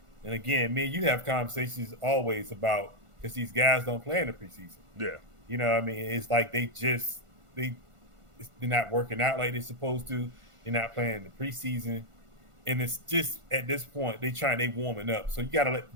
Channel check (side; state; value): left; late; 1.5 ms